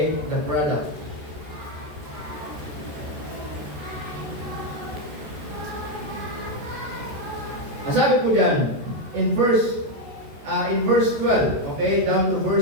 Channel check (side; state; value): left; late; 14 ms